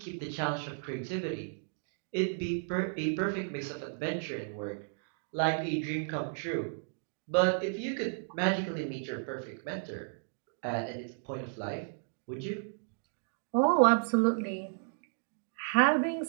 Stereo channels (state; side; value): silent; left; digital silence